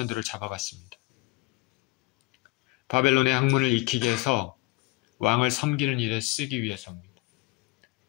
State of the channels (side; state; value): right; quieter; 22.7 dB